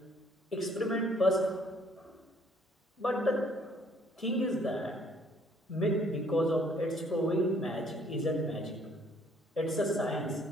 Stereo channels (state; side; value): normal; both; correlation 0.62